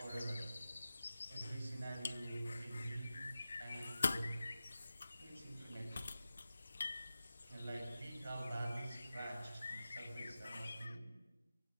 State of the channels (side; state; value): both; inverted; correlation -0.93